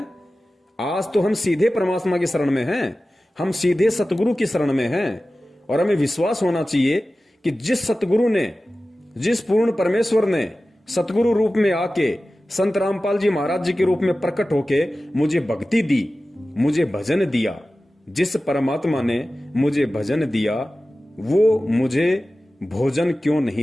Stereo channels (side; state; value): both; normal; correlation 0.95